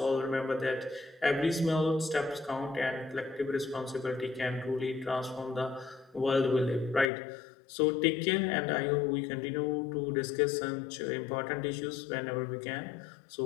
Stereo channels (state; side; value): drops out; right; at 7.1 s